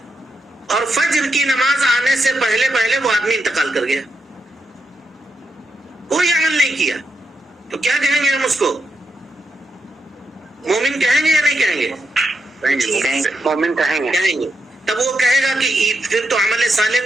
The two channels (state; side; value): normal; both; correlation 0.84